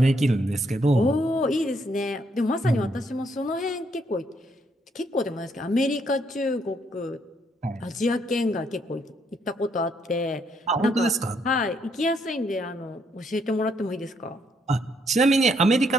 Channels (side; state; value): both; normal; correlation 0.72